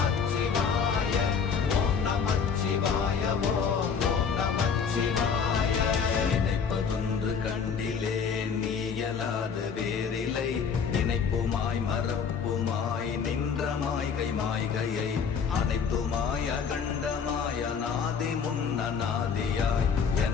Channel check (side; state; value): right; quieter; 6.3 dB